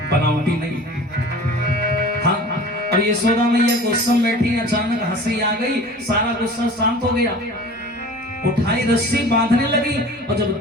बनावटी नहीं। हाँ अब यशोदा मैया गुस्से में बैठी, अचानक हंसी आ गई, सारा गुस्सा शांत हो गया। उठाई रस्सी बांधने लगी और जब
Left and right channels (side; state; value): both; normal; correlation 0.41